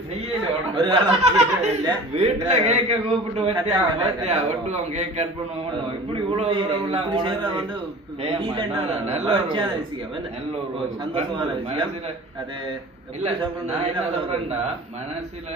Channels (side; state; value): both; normal; correlation 0.41